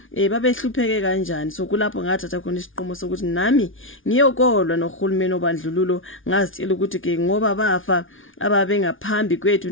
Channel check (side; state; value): right; late; 0.57 ms